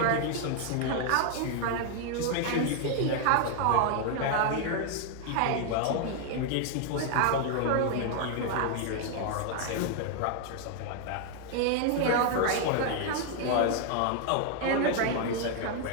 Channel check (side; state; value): both; different; correlation 0.00